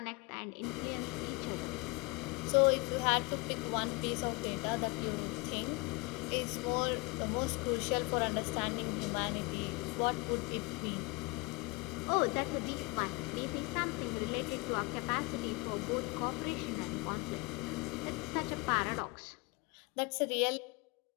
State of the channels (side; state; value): right; quieter; 26.5 dB